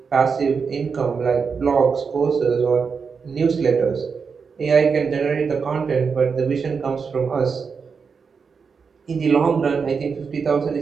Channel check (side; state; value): left; quieter; 5.6 dB